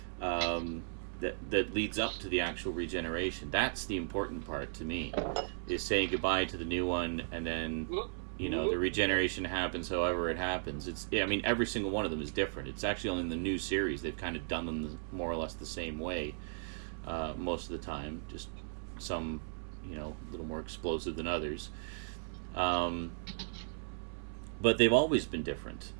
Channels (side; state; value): left; silent; 54 dB below the other